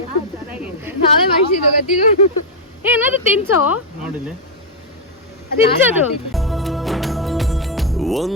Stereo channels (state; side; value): normal; both; correlation -0.02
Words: ನಾವೇ ಮಾಡಿಸಿದ್ದು ಗೊತ್ತಿಲ್ಲ. ಏನಾದ್ರು ತಿನ್ಸೋ, ನೋಡಿಲ್ಲ ತಿನ್ಸೋದು.